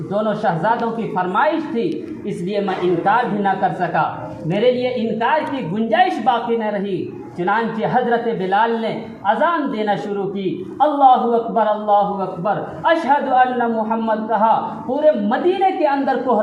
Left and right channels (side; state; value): both; identical; correlation 1.00